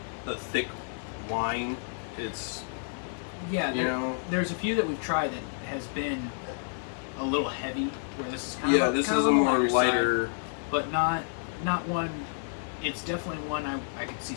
a thick wine. It's, Yeah, know. there's a few that we've tried that has been a little heavy. Where this is kind yeah, of this kind is of a on the more lighter. side, but not one. It's definitely one I could see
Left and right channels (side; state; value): right; silent; digital silence